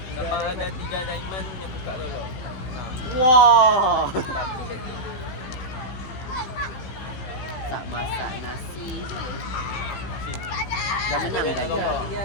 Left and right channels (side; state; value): right; late; 16 ms